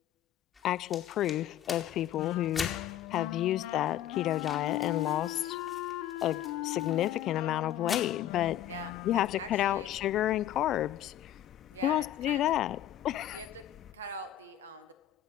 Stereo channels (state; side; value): quieter; right; 12.0 dB